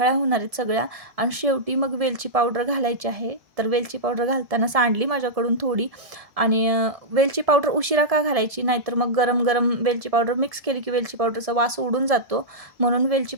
होणार आहेत सगळ्या. आणि शेवटी मग वेलची पावडर घालायची आहे. तर वेलची पावडर घालताना सांडली माझ्याकडून थोडी. आणि वेलची पावडर उशिरा का घालायची, नाहीतर मग गरम गरम वेलची पावडर मिक्स केली की वेलची पावडरचा वास उडून जातो, म्हणून वेलची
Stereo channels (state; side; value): late; left; 1.7 ms